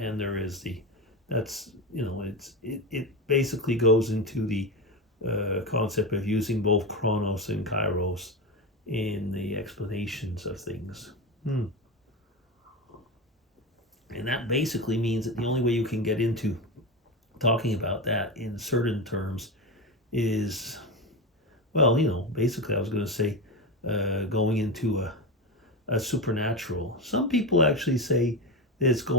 there is it basically goes into the concept of using both chronos and kairos in the explanations of things. And that basically means that the only way you can get into talking about that in certain terms is, well, basically I was going to say going into a supernatural. Some people actually say that it's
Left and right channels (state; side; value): normal; both; correlation 0.18